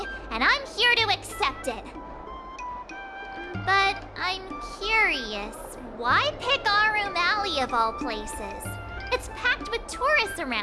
and I'm here to accept it. But I'm curious, why pick Arum Alley of all places? It's packed with tourists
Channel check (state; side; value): identical; both; correlation 1.00